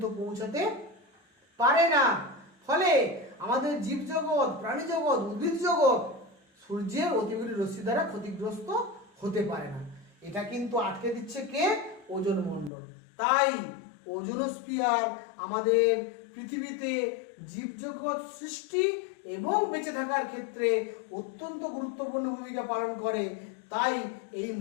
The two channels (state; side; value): drops out; right; at 12.7 s